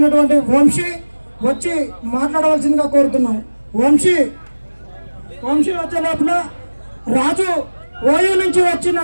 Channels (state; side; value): inverted; both; correlation -1.00